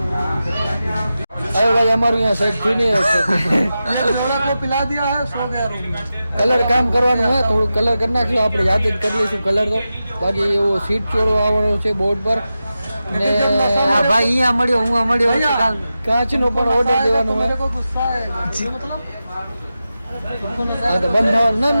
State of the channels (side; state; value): both; inverted; correlation -0.92